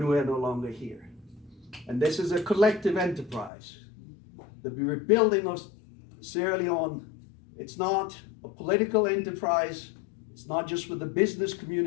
we're no longer here. And this is a collective enterprise. The rebuilding of Sierra Leone, it's not a political enterprise. It's not just with the business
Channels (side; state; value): right; drops out; at 3.5 s